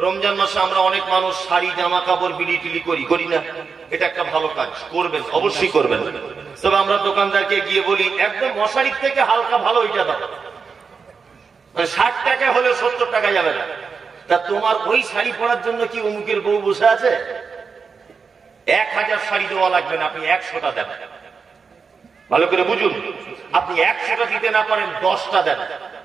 রমজান মাসে আমরা অনেক মানুষ শাড়ি জামা কাপড় বিলি টিলি করি না, এটা একটা ভালো কাজ, করবেন, অবশ্যই করবেন। তবে আমরা দোকানদারকে গিয়ে বলি একদম মশারির থেকে হালকা ভালো এটা দাও, 60 টাকা হলে 70 টাকা যাবে না। তা তোমার ওই শাড়ি পরার জন্য কি অমুকের বউ বসে আছে? 1000 শাড়ি দেওয়া লাগবে না, আপনি 100টা দেন। ভালো করে বুঝুন, আপনি 100টা দিতে না পারেন 10টা দেন,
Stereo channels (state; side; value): quieter; left; 5.4 dB